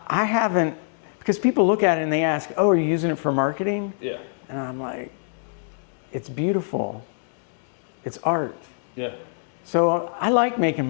haven't, because people look at it and they ask, oh, are you using it for marketing? Yeah. And I'm like, it's beautiful. It's art. Yeah. So I like making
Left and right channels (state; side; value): silent; right; digital silence